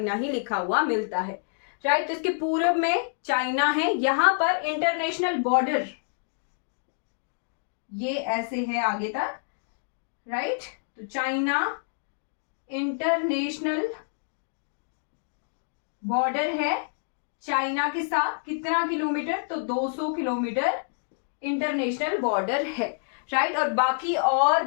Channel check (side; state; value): right; silent; digital silence